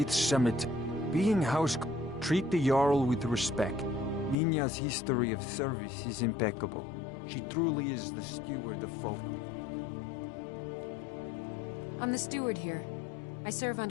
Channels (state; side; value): drops out; right; at 4.4 s